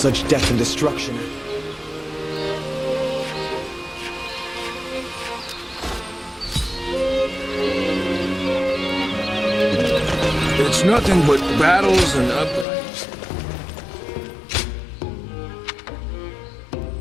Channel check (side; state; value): right; drops out; at 12.7 s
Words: death and destruction. It's nothing but battles and uprisings.